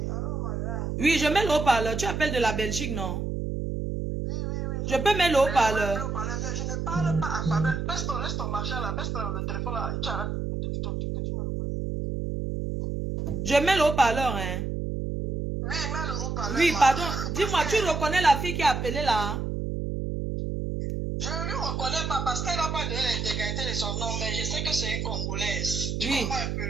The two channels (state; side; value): noise; right; hum, 2 dB below the sound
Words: allô, madame. Oui, je mets le haut-parleur. Tu appelles de la Belgique, non? Oui. Je peux mettre le haut-parleur. Je ne parle pas à Fabien. Laisse ton machin là, laisse le téléphone là et tu arrêtes. Tu me reconnais. Je mets le haut-parleur, hein. Oui, mets le haut-parleur. Oui, pardon. Dis-moi, tu reconnais la fille qui a appelé là? Je ne lui reconnais pas parce qu'elle n'a pas de l'intégrité de son nom, mais je sais que c'est une Congolaise. Tu Oui. comprends un